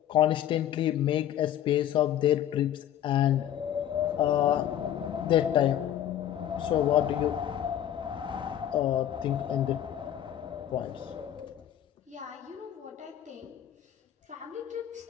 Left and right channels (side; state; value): right; quieter; 11.0 dB